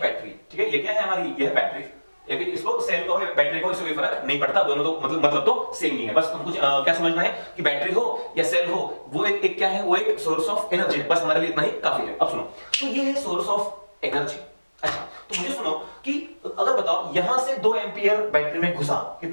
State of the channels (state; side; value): inverted; both; correlation -1.00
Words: ठीक है, ये क्या है हमारी, ये है बैटरी, या फिर इसको सेल को बैटरी को इससे कोई फर्क नहीं पड़ता, दोनों तो मतलब तो सेम ही है। बस हमको क्या समझना है कि बैटरी हो या सेल हो, वो एक क्या है, वो एक सोर्स ऑफ एनर्जी है, बस हमारे लिए इतना ही काफी है। अब सुनो, तो ये है सोर्स ऑफ एनर्जी। अच्छा, तो मुझे सुनो कि अगर बताओ यहां से 2 एंपियर बैटरी में घुसा,